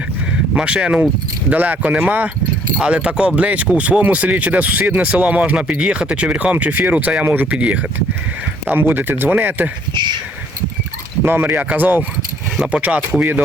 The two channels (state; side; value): normal; both; correlation 0.62